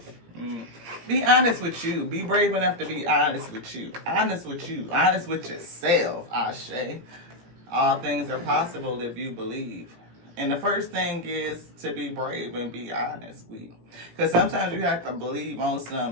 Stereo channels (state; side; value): late; left; 17 ms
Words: Be honest with you. Be brave enough to be honest with you. Honest with you. Honest with yourself, Ashe. All things are possible if you believe. And the first thing is to be brave and be honest. Because sometimes you have to believe on